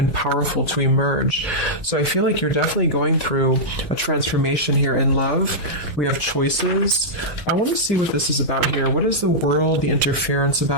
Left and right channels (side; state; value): right; late; 2.8 ms